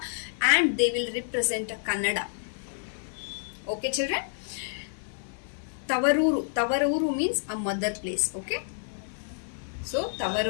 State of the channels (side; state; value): right; silent; digital silence